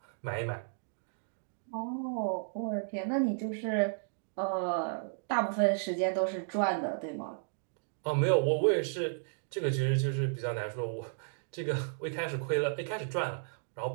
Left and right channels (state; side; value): silent; left; digital silence